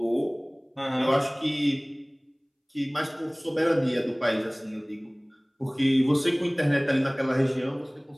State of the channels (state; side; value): identical; both; correlation 1.00